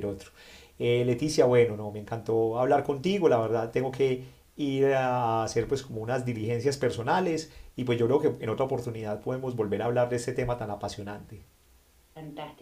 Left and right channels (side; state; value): both; identical; correlation 1.00